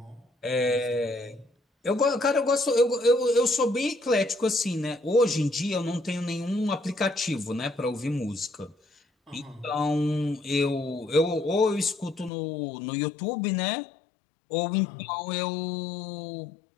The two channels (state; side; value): drops out; right; at 12.3 s